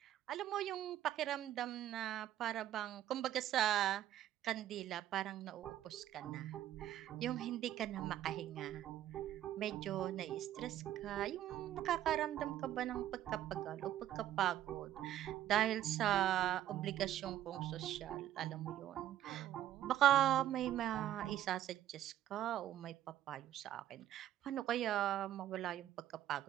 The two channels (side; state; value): left; quieter; 12.3 dB